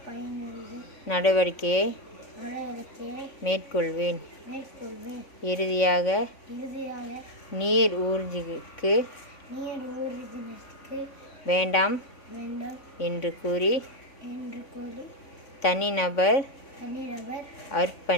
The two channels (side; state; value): right; late; 3.5 ms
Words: நடவடிக்கையை மேற்கொள்வேன். இறுதியாக நீர் ஊர்திக்கு வேண்டாம் என்று கூறி தனிநபர்